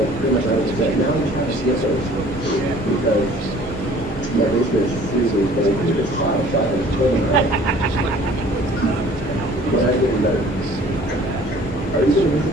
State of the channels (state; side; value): normal; both; correlation 0.52